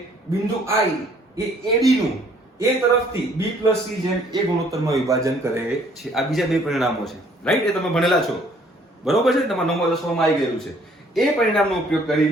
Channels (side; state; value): both; normal; correlation 0.60